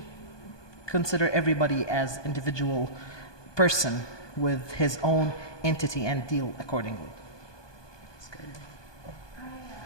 consider everybody as individual person with his own entity and deal accordingly.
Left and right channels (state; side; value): late; right; 1.2 ms